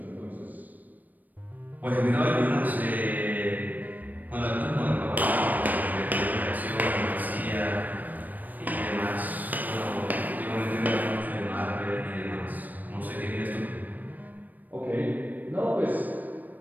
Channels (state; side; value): late; left; 0.084 ms